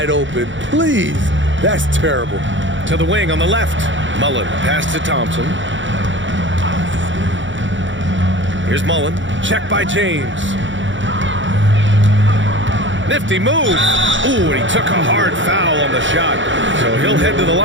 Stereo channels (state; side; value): late; left; 0.55 ms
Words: open? Please. That's terrible. To the wing on the left. Mullen pass to Thompson. Here's Mullen. Check by James. Nifty move. Ooh, and he took a hard foul on the shot. So he'll head to the